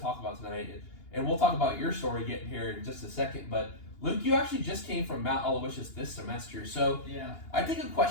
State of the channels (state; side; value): late; right; 2.8 ms